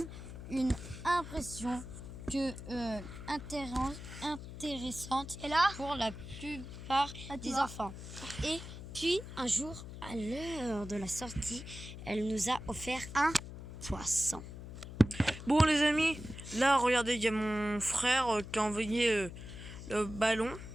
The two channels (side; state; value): left; noise; hum, 11 dB below the sound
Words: une impression intéressante pour la plupart des enfants. Et puis un jour, à l'heure de la sortie, elle nous a offert un poisson. Bon, les amis, là, regardez, il y a mon frère qui a envoyé le ballon.